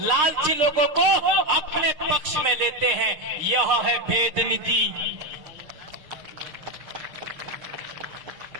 लोगों को अपने पक्ष में लेते हैं। यह है भेद नीति।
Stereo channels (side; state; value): left; late; 6.5 ms